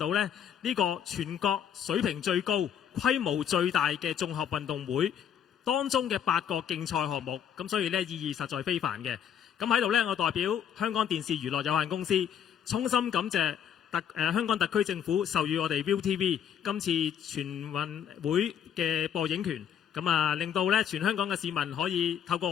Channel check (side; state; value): right; quieter; 8.9 dB